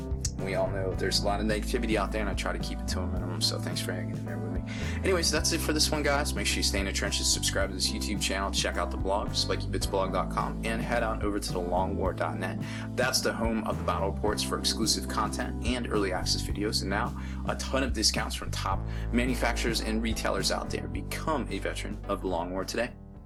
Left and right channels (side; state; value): both; identical; correlation 1.00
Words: We all know there's a lot of negativity out there, and I try to keep it to a minimum, so thanks for hanging in there with me. Anyways, that's it for this one, guys. Make sure you stay in the trenches, subscribe to this YouTube channel, check out the blog, spikybitsblog.com, and head on over to thelongwar.net. That's the home of the battle reports for exclusive content and early access videos, and now a ton of discounts from top manufacturers and retailers out there. Become a veteran of the Long War today.